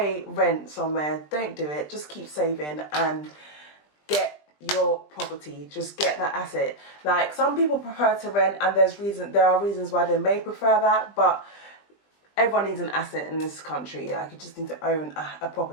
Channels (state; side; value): late; right; 20 ms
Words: rent somewhere, don't do it. Just keep saving and get your property, just get that asset. Like, some people prefer to rent, and there are reasons why they may prefer that, but everyone needs an asset in this country. Like, you just need to own a